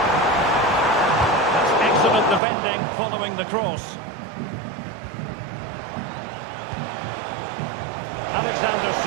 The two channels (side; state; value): left; drops out; at 2.4 s